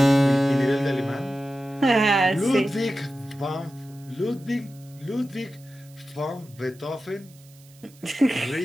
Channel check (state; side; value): noise; right; hiss, 26 dB below the sound